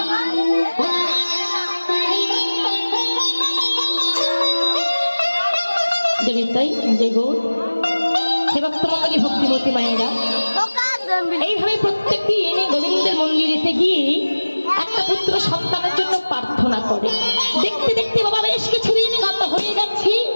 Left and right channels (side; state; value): both; inverted; correlation -1.00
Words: ভক্তিমতী মায়েরা এইভাবে প্রত্যেকটি এনে গোবিন্দের মন্দিরেতে গিয়ে একটা পুত্র সন্তানের জন্য প্রার্থনা করে। দেখতে দেখতে বাবা বেশ কিছুদিন গত হয়ে যাচ্ছে।